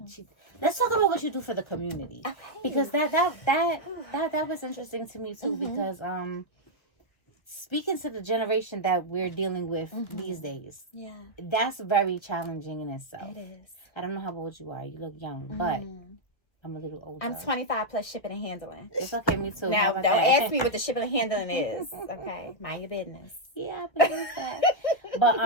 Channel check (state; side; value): late; right; 1.5 ms